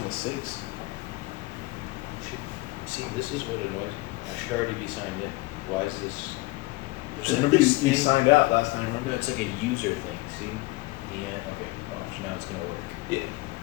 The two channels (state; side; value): quieter; right; 22.0 dB